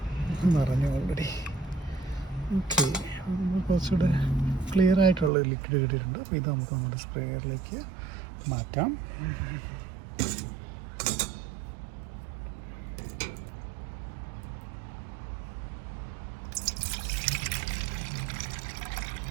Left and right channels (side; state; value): left; drops out; at 5.3 s